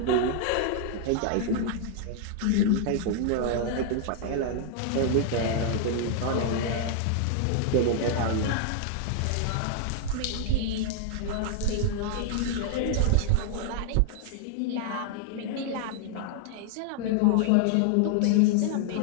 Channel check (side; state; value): both; different; correlation 0.00